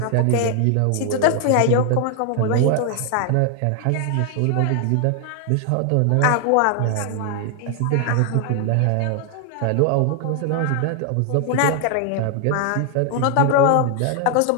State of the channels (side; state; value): both; different; correlation 0.00